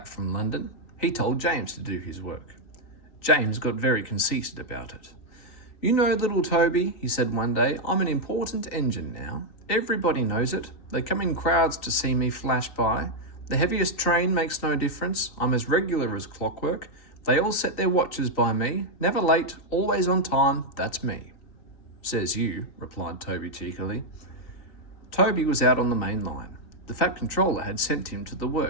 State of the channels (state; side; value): late; right; 3.9 ms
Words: from London. He told James to do his work. James got very conceited about it. "You know, little Toby," he said one day, "I'm an important engine now. Everybody knows it. They come in crowds to see me flash by. The heaviest train makes no difference. I'm as regular as clockwork. They all set their watches by me. Never late, always on time. That's me." "Says you," replied Toby cheekily. Toby was out on the main line. The Fat Controller had sent him to the